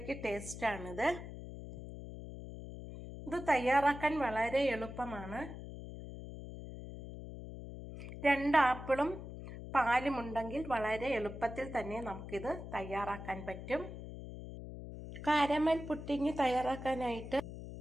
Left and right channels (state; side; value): noise; left; hum, 10 dB below the sound